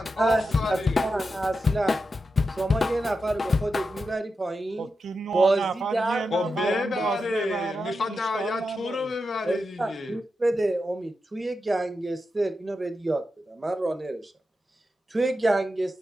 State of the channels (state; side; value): normal; both; correlation 0.89